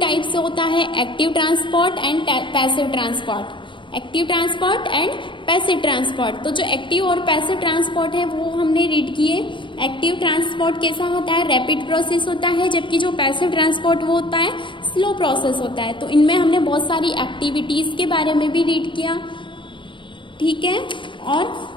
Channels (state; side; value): late; right; 0.24 ms